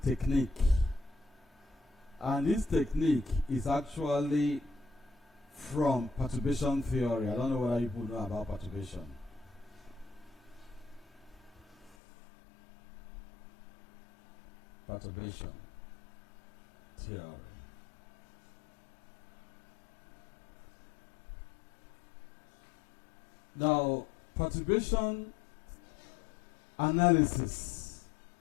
technique. And this technique is actually from perturbation theory. I don't know whether people know about perturbation. Perturbation theory. Now, perturbation analysis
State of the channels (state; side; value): drops out; right; at 12.0 s